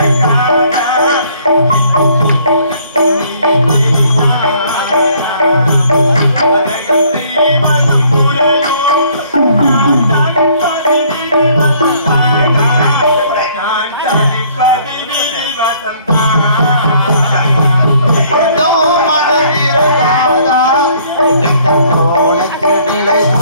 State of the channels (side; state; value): both; inverted; correlation -0.61